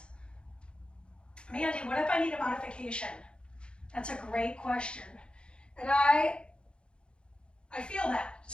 Mandee, what if I need a modification? That's a great question. And I feel that.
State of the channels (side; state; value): right; late; 0.055 ms